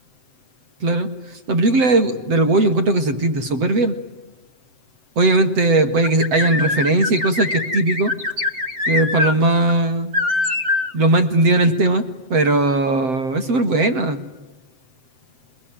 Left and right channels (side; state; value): left; late; 7.8 ms